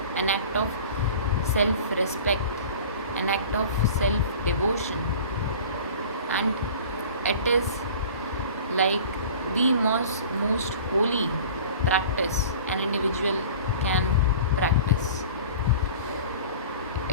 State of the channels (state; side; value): inverted; both; correlation -0.41